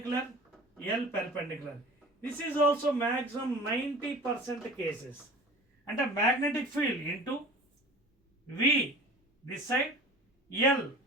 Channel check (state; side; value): normal; both; correlation 0.41